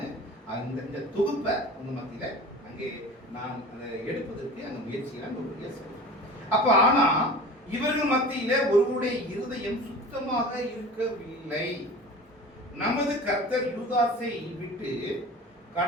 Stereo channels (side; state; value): both; normal; correlation 0.38